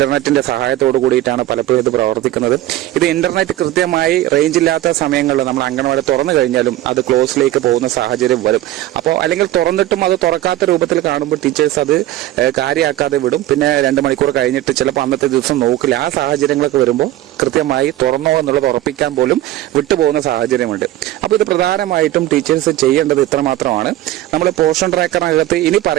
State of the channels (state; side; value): quieter; left; 14.7 dB